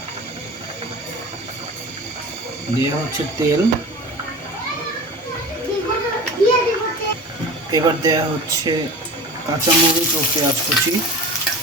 দেওয়া হচ্ছে তেল, এবার দেওয়া হচ্ছে কাঁচামরিচ ও পেঁয়াজ কুচি।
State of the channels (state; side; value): normal; both; correlation 0.35